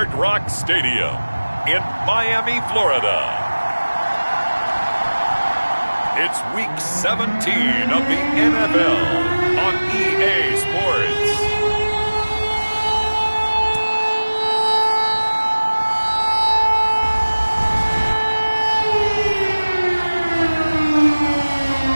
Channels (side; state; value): both; inverted; correlation -1.00